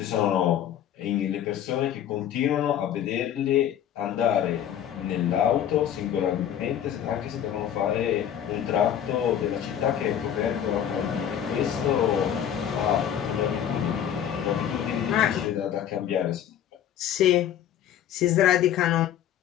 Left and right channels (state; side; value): quieter; right; 10.0 dB